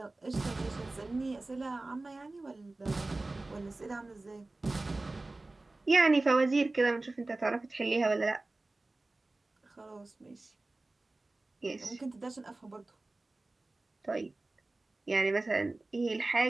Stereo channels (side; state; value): left; quieter; 3.1 dB